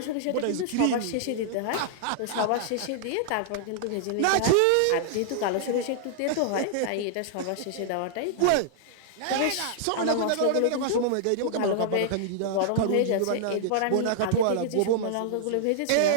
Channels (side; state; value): both; different; correlation -0.01